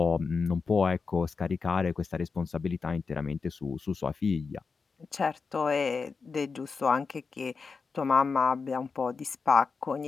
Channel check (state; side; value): quieter; right; 4.9 dB